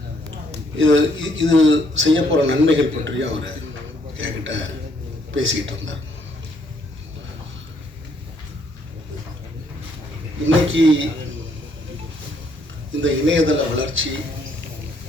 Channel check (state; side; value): normal; both; correlation 0.69